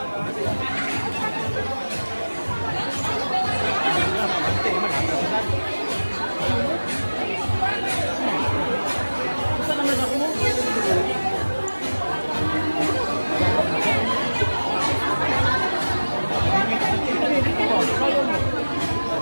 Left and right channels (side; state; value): both; inverted; correlation -1.00